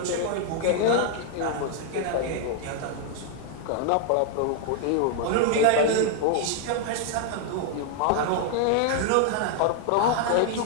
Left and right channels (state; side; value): different; both; correlation 0.00